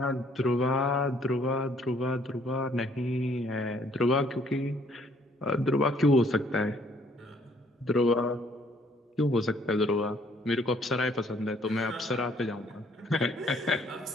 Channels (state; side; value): normal; both; correlation 0.63